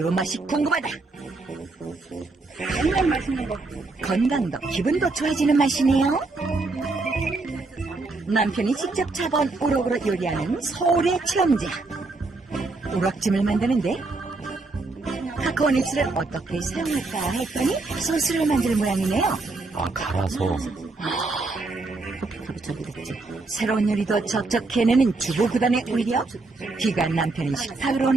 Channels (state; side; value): quieter; left; 3.5 dB